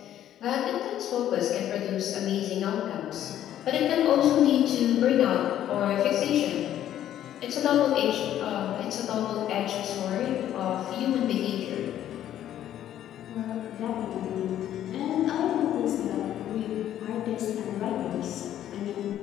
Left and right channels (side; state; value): right; quieter; 11.5 dB